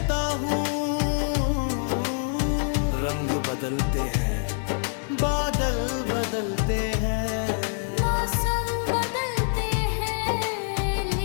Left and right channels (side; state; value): right; silent; 59 dB below the other